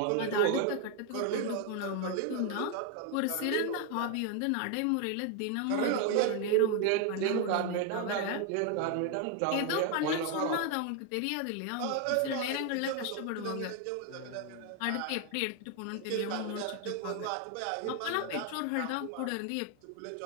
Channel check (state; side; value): different; both; correlation 0.01